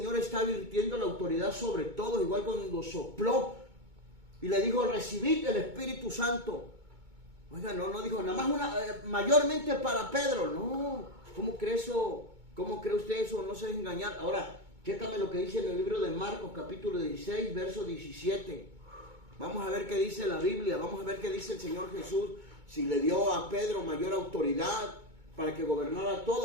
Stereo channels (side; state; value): left; late; 2.2 ms